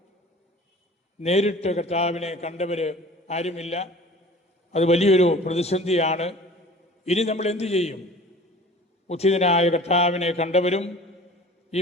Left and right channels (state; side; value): normal; both; correlation 0.44